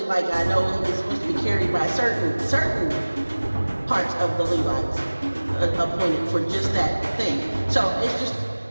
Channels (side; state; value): both; inverted; correlation -1.00